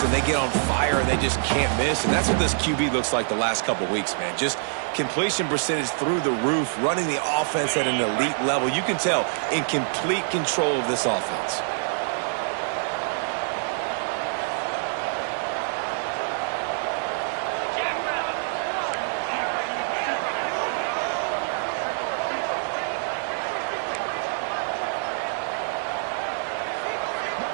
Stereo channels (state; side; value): silent; left; 61 dB below the other